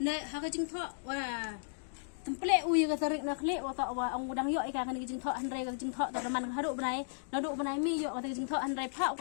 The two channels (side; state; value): right; silent; digital silence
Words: Nek haka jing thak wah template ui ka tarik nak lek wa tak wa ang udang yok ika kan jing thak henrai ka jing thak tak man haduk benai naduk benai mi yok ka jing thak henrai phak